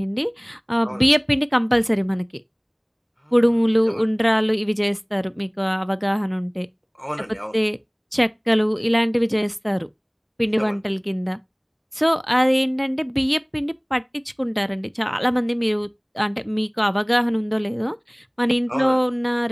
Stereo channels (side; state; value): both; identical; correlation 1.00